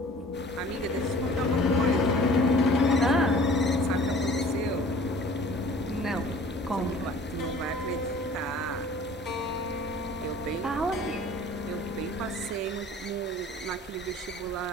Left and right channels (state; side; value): normal; both; correlation 0.48